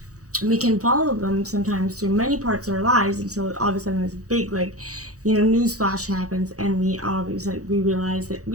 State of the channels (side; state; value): left; late; 0.66 ms